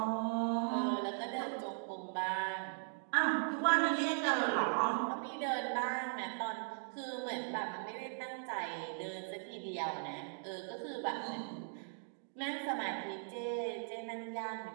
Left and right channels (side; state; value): left; silent; digital silence